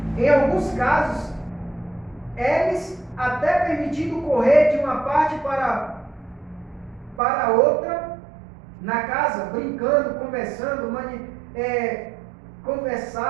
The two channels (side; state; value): left; drops out; at 7.2 s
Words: Em alguns casos, eles até permitido correr de uma parte para outra na casa, brincando, conversando,